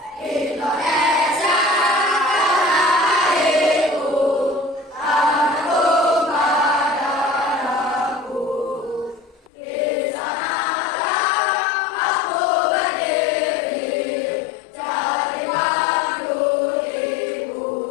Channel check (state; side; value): drops out; right; at 9.5 s